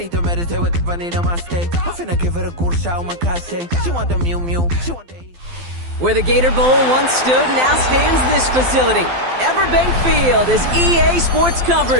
to meditate with the bunny on my stay. I'm finna give her a good shot with my case. She want the Mew Mew. She want the... Where the Gator Bowl once stood, now stands this facility. Everbank Field, as EA Sports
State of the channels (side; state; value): left; late; 12 ms